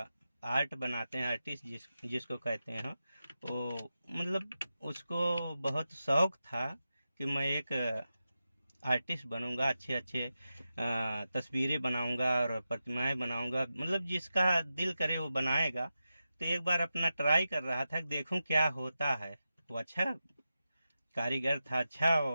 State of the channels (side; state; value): both; inverted; correlation -0.91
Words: आर्ट बनाते हैं, आर्टिस्ट जिसको कहते हैं, वो मतलब उसको बहुत शौक था कि मैं एक आर्टिस्ट बनूंगा, अच्छे अच्छे तस्वीरें बनाऊंगा और प्रतिमाएं बनाऊंगा, मतलब जिसका दिल करे वो बनाएगा। तो एक बार अपना ट्राई कर रहा था, देखूं क्या होता है। वो अच्छा कारीगर था, अच्छा